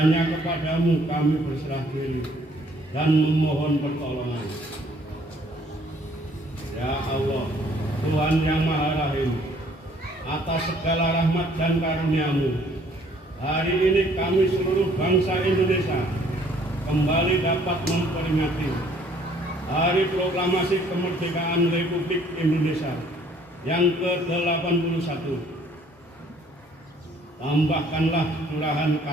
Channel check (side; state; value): both; normal; correlation 0.61